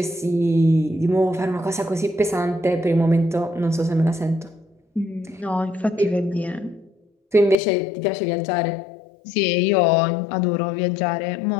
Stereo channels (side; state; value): right; drops out; at 7.6 s